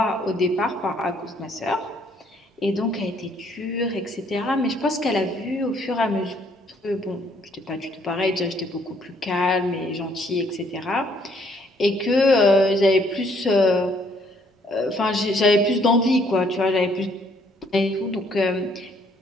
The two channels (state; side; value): normal; both; correlation 0.66